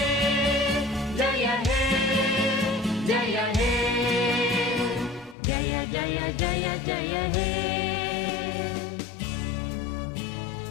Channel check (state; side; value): drops out; right; at 5.4 s